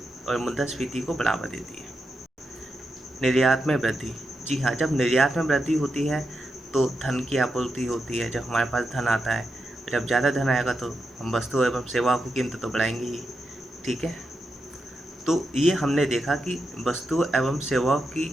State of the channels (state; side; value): normal; both; correlation 0.87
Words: और मुद्रास्फीति को बढ़ावा देती है। निर्यात में वृद्धि, जी हाँ, जब निर्यात में वृद्धि होती है तो धन की आपूर्ति होती है। जब हमारे पास धन आता है, जब ज़्यादा धन आएगा तो हम वस्तु एवं सेवाओं की कीमत तो बढ़ाएंगे ही। ठीक है, तो ये हमने देखा कि वस्तु एवं सेवाओं की